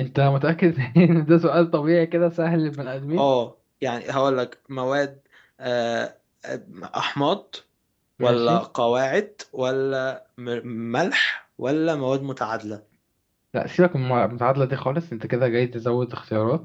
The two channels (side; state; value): both; identical; correlation 1.00